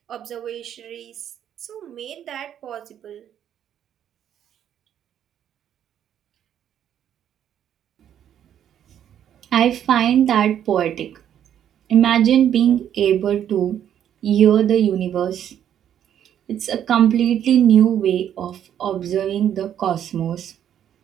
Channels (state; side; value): quieter; left; 10.0 dB